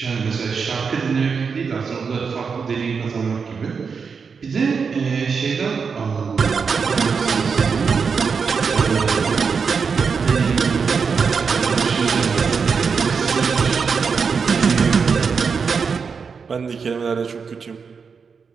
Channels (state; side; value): quieter; left; 5.6 dB